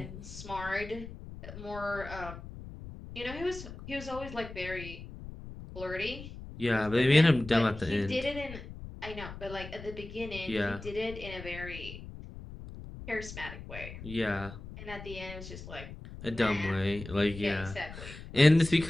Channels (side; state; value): left; noise; rumble, 12 dB below the sound